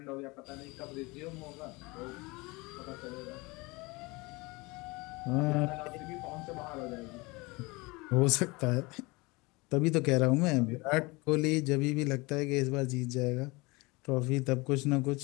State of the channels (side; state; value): right; quieter; 24.7 dB